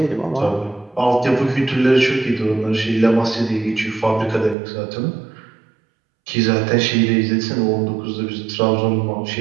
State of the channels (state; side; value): drops out; left; at 4.5 s